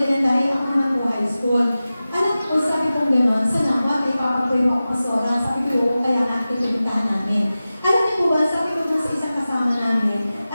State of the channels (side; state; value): both; inverted; correlation -0.95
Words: ako naman po high school. Alam ko, sabi kong gano'n, sa nawa, may papapuyo ako pasora, sabi ko, kaya natin pinuntahan namin. Alam niyo po ba, sabi ko dun sa isang kasama namin,